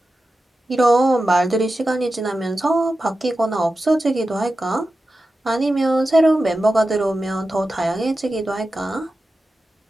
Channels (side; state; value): both; normal; correlation 0.92